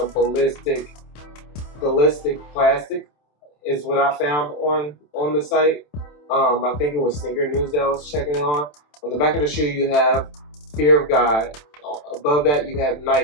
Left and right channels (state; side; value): late; right; 27 ms